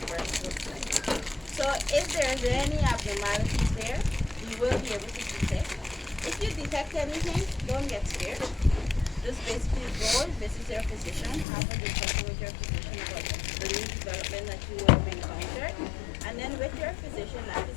breast looks like. So if there's any abnormalities there, you will be able to detect. If you detect anything, don't get scared. Just basically go visit your physician, have a discussion with your physician about the new development that you will have encountered. And then with your physician, that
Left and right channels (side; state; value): right; drops out; at 11.5 s